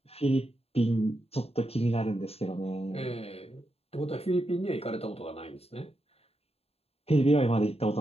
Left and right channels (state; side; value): late; right; 0.29 ms